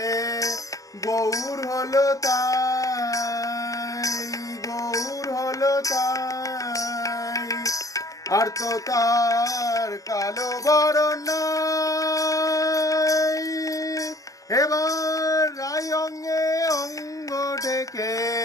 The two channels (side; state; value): right; late; 0.16 ms